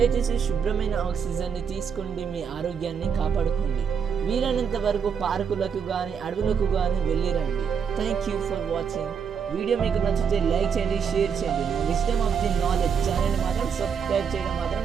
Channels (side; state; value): left; quieter; 6.9 dB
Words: శుభ్రమైన ఆక్సిజన్ని తీసుకోండి, మీ ఆరోగ్యాన్ని కాపాడుకోండి. వీలైనంత వరకు పార్కులకు కానీ అడవులకు కానీ వెళ్ళిరండి. Thank you for watching. Video మీకు నచ్చితే లైక్ చేయండి, షేర్ చేయండి. విజ్డమ్ ఆఫ్ ది నాలెడ్జ్ ఛానల్ని మాత్రం సబ్స్క్రైబ్ చేయడం మాత్రం